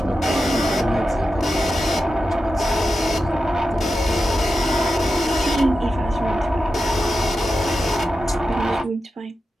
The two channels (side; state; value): both; normal; correlation 0.91